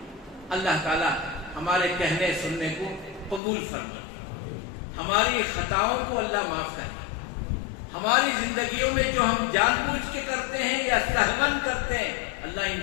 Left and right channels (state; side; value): drops out; right; at 3.4 s